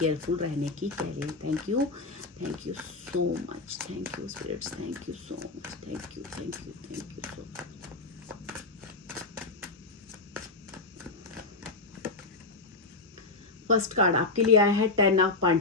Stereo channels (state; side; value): quieter; right; 3.5 dB